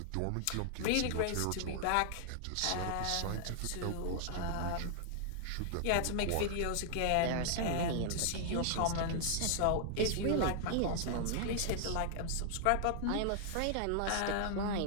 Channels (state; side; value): different; both; correlation 0.00